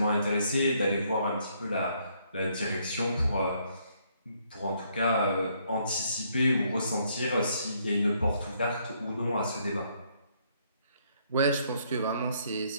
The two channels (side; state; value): both; inverted; correlation -0.70